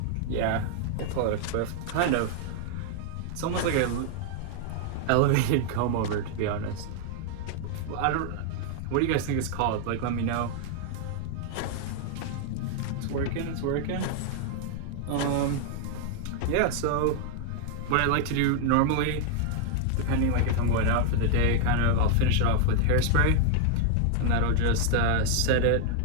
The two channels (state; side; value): different; both; correlation 0.00